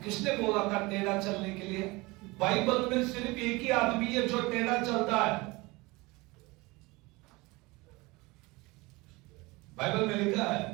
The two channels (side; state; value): left; quieter; 23.3 dB